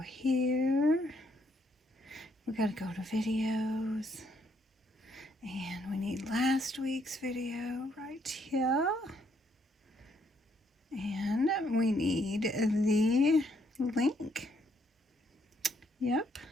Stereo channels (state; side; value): normal; both; correlation 0.71